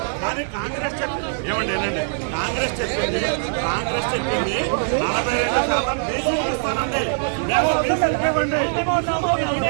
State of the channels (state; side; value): silent; left; digital silence